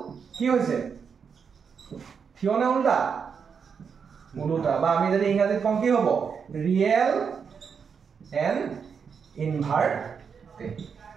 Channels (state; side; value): quieter; left; 6.4 dB